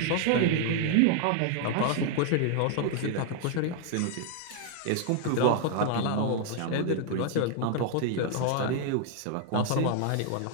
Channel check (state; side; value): different; both; correlation 0.00